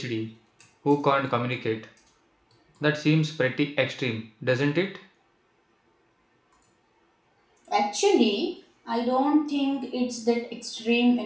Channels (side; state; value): both; identical; correlation 1.00